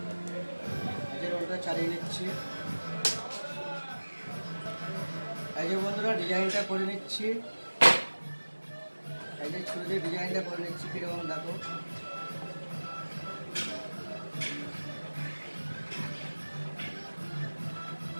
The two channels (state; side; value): inverted; both; correlation -1.00